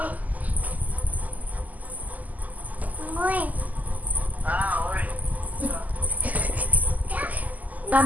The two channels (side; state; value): left; late; 0.079 ms